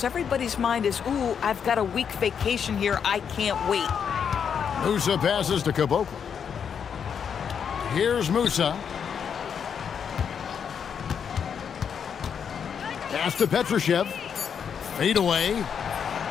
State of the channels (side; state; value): right; quieter; 7.3 dB